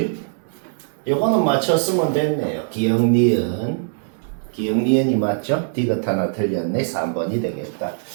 요거는 맞췄으면 됐네요. 기억, 니은. 기억, 니은이 맞죠? 디귿 하나 틀렸네. 3번이 되겠다.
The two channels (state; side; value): silent; left; digital silence